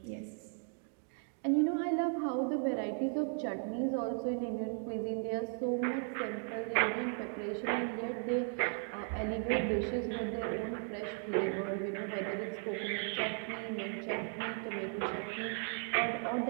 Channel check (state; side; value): silent; left; 54 dB below the other